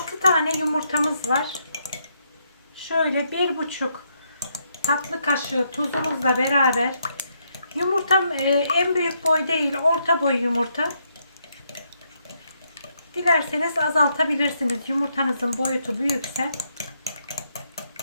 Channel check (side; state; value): both; inverted; correlation -0.76